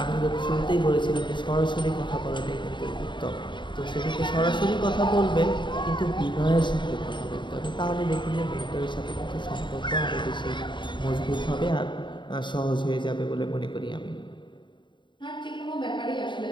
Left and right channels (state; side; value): late; right; 0.23 ms